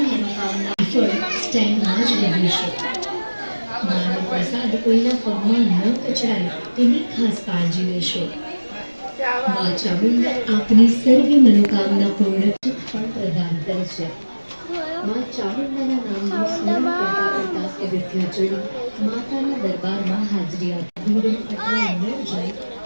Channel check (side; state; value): both; inverted; correlation -1.00